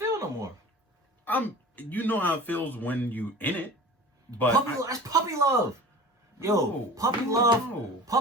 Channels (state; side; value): normal; both; correlation 0.39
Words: no more. You know how it feels when you in it, but that's puppy love. Yo, puppy